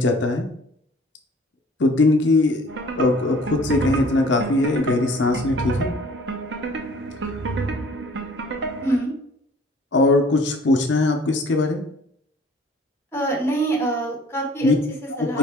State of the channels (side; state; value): both; normal; correlation 0.52